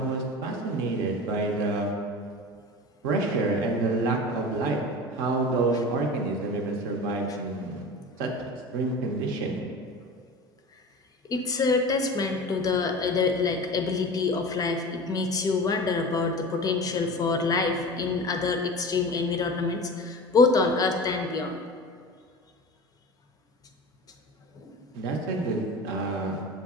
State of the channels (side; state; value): both; normal; correlation 0.33